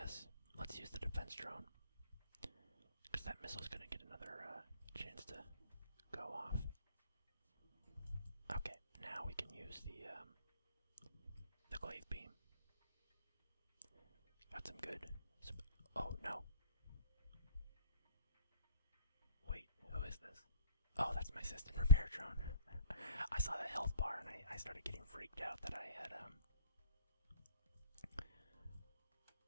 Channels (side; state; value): both; inverted; correlation -0.49